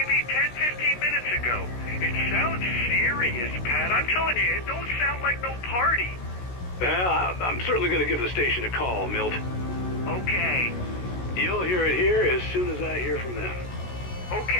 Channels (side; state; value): right; late; 16 ms